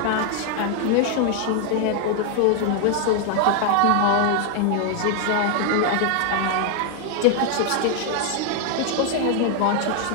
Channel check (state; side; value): different; both; correlation 0.00